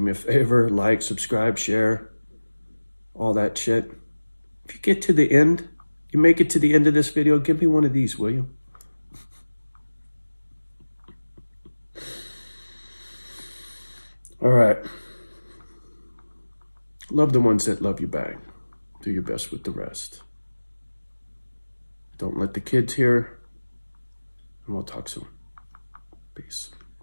a favor, like, subscribe, share, all that shit. If you get to the end, you make it to the end of this video, give me one of these, will you? All right. Love the ones that love you back. Do your best with the rest. Don't let the kids hear, and we'll talk soon. Peace.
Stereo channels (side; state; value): both; inverted; correlation -1.00